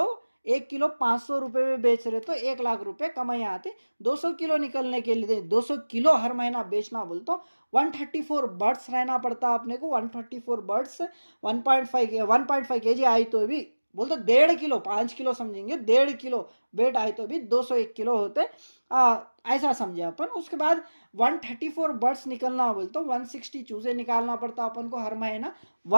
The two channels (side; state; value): both; inverted; correlation -1.00